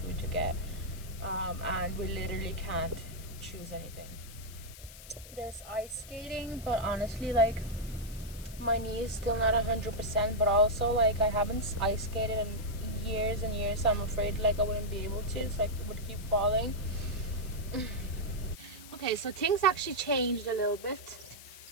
to get, and we literally can't choose anything. There's ice skating, but honestly, like, my knee is still not 100%, but also like I haven't ice skated in years and years, so I'm afraid like I wouldn't be able to, so I would keep falling. Okay, so things actually changed a little bit.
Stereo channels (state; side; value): noise; left; hiss, 17 dB below the sound